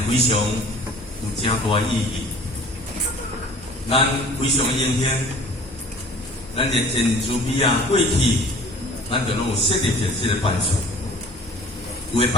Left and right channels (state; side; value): normal; both; correlation 0.47